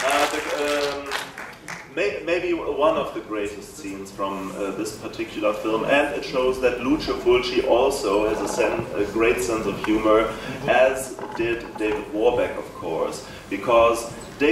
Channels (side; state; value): both; identical; correlation 1.00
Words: Maybe one of the greatest scenes from this particular film, and it shows that Lucio Fulci also has a great sense of humor, as did David Warbeck, of course, because